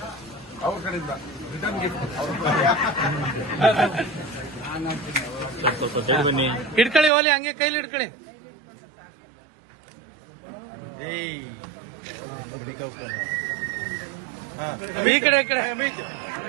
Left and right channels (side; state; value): left; drops out; at 7.1 s